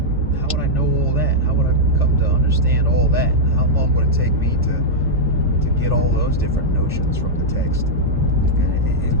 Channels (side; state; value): both; normal; correlation -0.04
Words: know all that? How would I come to understand all that? How long would it take me to get all those different notions from the text?